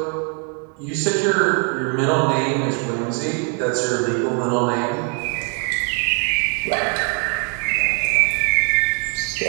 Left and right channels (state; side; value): quieter; left; 39.4 dB